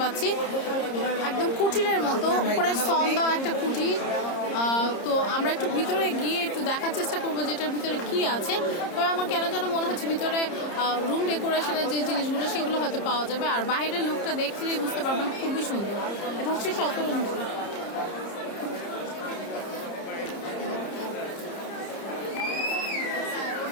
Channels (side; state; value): right; late; 30 ms